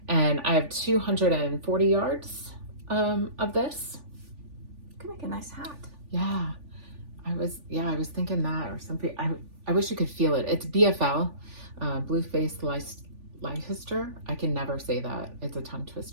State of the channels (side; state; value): left; late; 3.4 ms